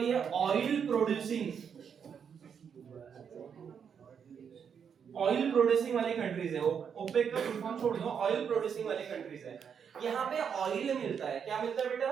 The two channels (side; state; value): left; quieter; 7.2 dB